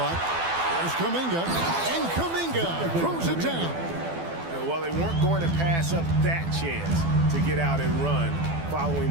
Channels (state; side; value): late; left; 12 ms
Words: There's Kuminga. And Kuminga throws it down. Well, they weren't going to pass up that chance to get out and run following